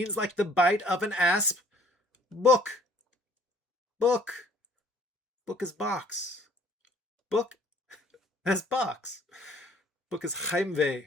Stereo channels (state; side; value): normal; both; correlation 0.57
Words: like the bite of an asp. Book, book, book is box. Book as box. Book as Heimweh